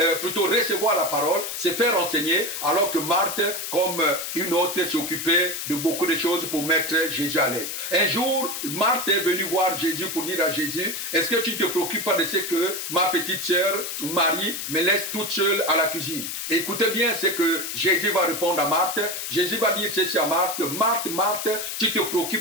plutôt recevoir la parole, se faire enseigner, alors que Marthe, comme une autre, s'occupait de beaucoup de choses pour mettre Jésus à l'aise. Un jour, Marthe est venue voir Jésus pour dire à Jésus, est-ce que tu ne te préoccupes pas de ce que ma petite sœur Marie me laisse toute seule à la cuisine? Écoutez bien ce que Jésus va répondre à Marthe. Jésus va dire ceci à Marthe, Marthe, tu te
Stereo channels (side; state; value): left; noise; hiss, 5 dB below the sound